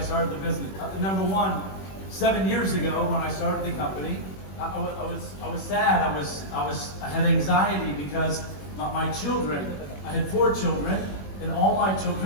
the business. Number one, 7 years ago when I started the company, I was sad. I had anxiety because my children, I had 4 children, and all my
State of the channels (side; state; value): right; late; 21 ms